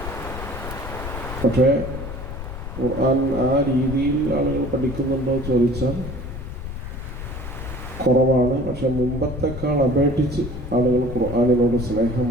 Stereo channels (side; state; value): left; noise; rumble, 8 dB below the sound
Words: പക്ഷേ ഖുർആൻ ആ രീതിയിൽ ആളുകൾ പഠിക്കുന്നുണ്ടോ ചോദിച്ചാൽ കുറവാണ്. പക്ഷെ മുമ്പത്തെക്കാൾ അപേക്ഷിച്ച് ആളുകൾ ഖുർആനിനോട്